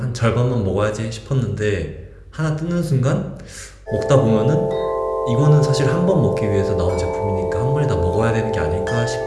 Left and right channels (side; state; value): both; identical; correlation 1.00